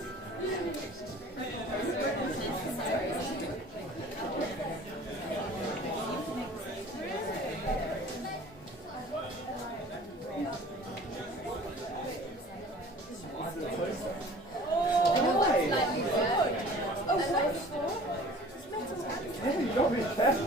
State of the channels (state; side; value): normal; both; correlation 0.46